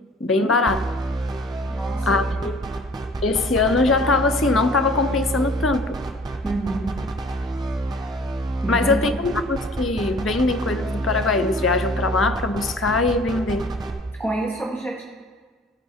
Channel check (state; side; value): normal; both; correlation 0.50